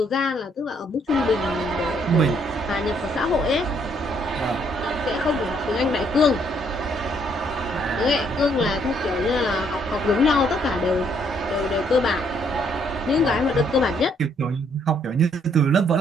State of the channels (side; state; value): both; normal; correlation 0.68